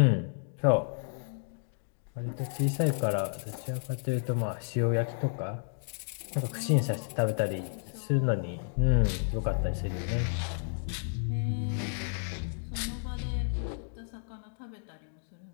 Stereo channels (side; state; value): right; silent; digital silence